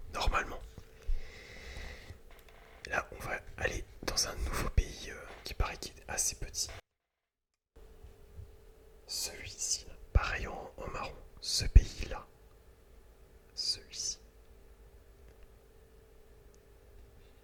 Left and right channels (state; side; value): identical; both; correlation 1.00